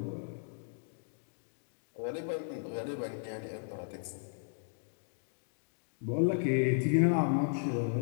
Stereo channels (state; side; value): silent; right; digital silence